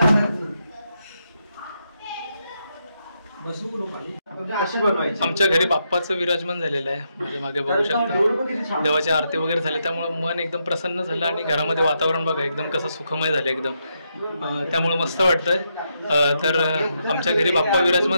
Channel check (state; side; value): inverted; both; correlation -0.81